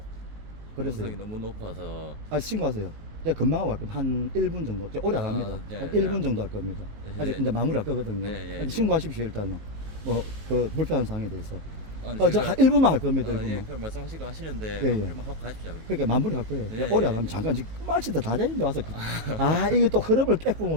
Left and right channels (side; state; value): left; late; 19 ms